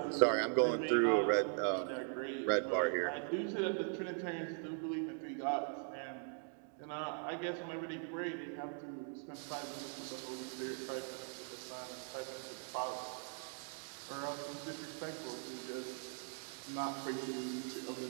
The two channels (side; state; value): left; silent; 51 dB below the other